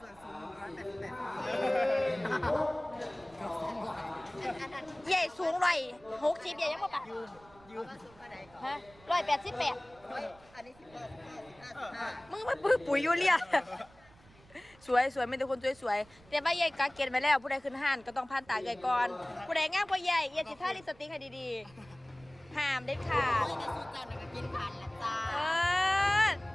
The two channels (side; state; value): right; noise; rumble, 26 dB below the sound